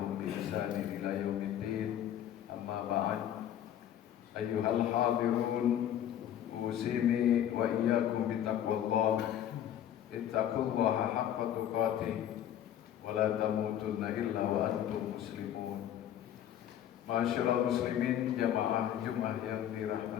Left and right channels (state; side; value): quieter; right; 10.8 dB